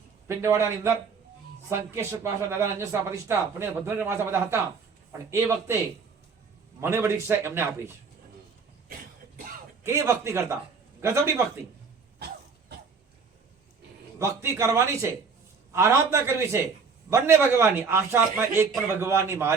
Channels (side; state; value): left; quieter; 5.2 dB